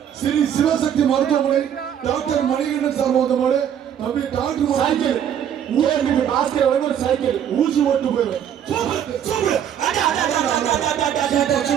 ஸ்ரீ சிவசக்தி மருத்துவமனை டாக்டர் மணிகண்டன் சார்பாக வந்த மாடு தம்பி டாக்டர் சைக்கிள் ஊருக்கு பாஸ்கர் ஒரு சைக்கிள் ஊசி ஓட்டு போயிடும்.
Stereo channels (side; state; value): left; quieter; 9.3 dB